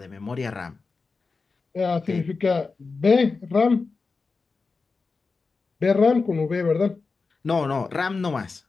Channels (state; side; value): quieter; right; 4.3 dB